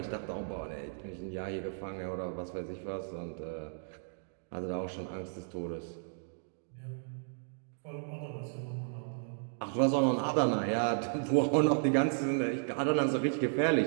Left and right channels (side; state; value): left; silent; digital silence